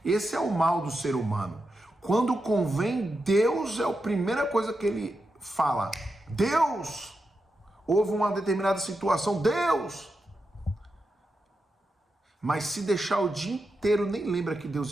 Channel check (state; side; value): normal; both; correlation 0.88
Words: Esse é o mal do ser humano. Quando convém, Deus é a primeira coisa que Ele fala. Deus! Houve uma determinada situação, Deus! Mas se deixar o dia inteiro, nem lembra que